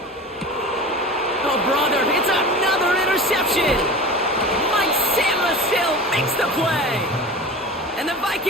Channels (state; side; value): normal; both; correlation 0.34